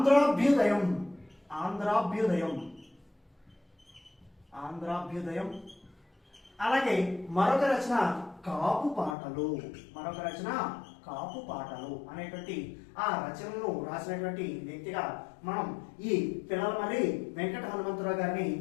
అలాగే మరొక రచన కాపు పాటలు అనేటువంటి ఆ రచనలను రాసినటువంటి వ్యక్తిగా మనం ఈ పిల్లలమర్రి వెంకట హనుమంతరావు గారిని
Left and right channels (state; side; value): drops out; right; at 9.2 s